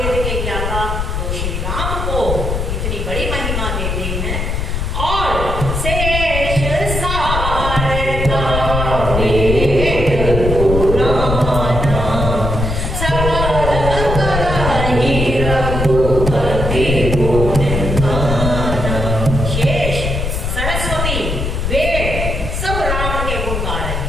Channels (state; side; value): noise; left; rumble, 2 dB below the sound